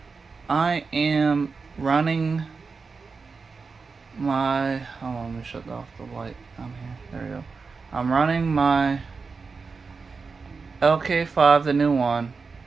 I am running my, hold on, let me shut off the light down here. There we go. I'm running my lk5, the new one,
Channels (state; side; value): quieter; left; 4.7 dB